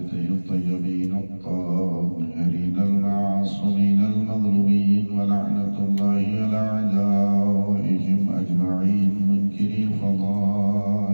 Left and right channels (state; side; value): inverted; both; correlation -1.00